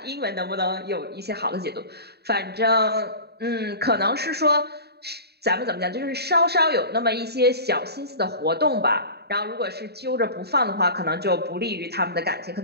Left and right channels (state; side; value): late; left; 0.47 ms